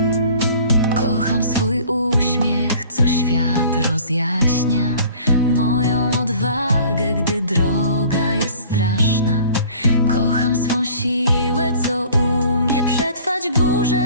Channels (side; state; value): both; inverted; correlation -0.49